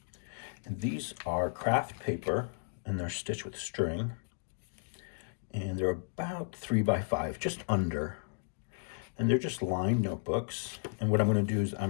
And these are craft paper, and they're stitched with string. And they're about 3 by 5, just under. And they're just lined notebooks. And what I'm going to do is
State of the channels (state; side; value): silent; right; digital silence